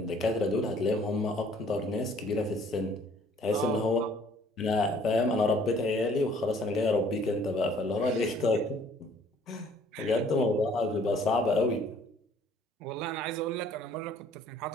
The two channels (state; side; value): normal; both; correlation 0.58